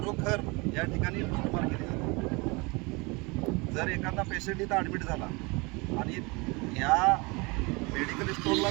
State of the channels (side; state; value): left; quieter; 27.0 dB